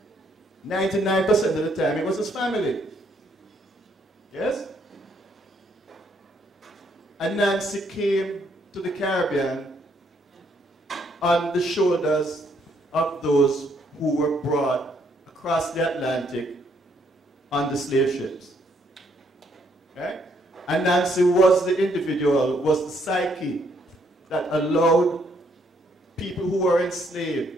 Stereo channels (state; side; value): normal; both; correlation 0.70